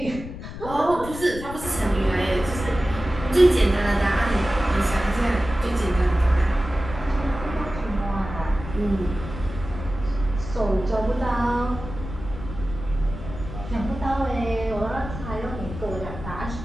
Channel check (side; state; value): left; noise; rumble, 10 dB below the sound